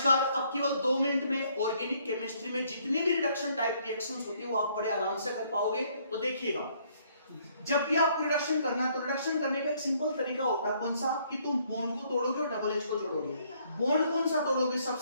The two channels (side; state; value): both; inverted; correlation -0.66